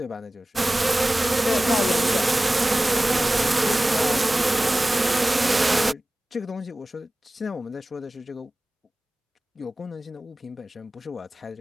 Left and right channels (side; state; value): both; normal; correlation 0.97